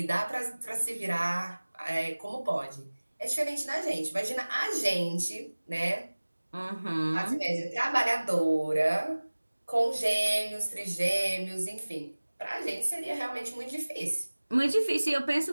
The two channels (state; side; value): inverted; both; correlation -1.00